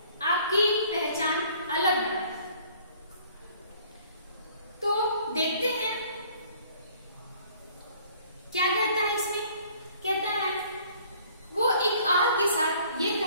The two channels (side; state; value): both; inverted; correlation -0.56